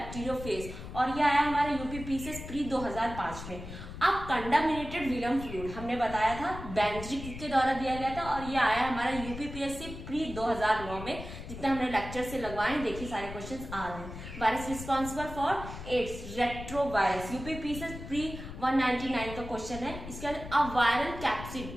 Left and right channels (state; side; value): noise; left; rumble, 11 dB below the sound